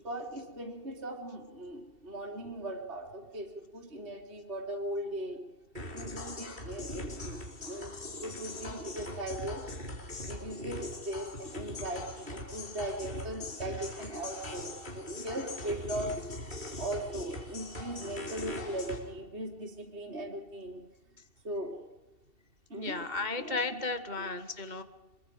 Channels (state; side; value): late; left; 2.7 ms